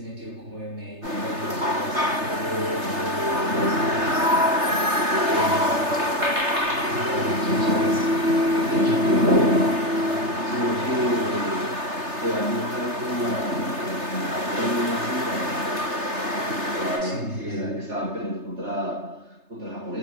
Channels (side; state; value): left; late; 3.3 ms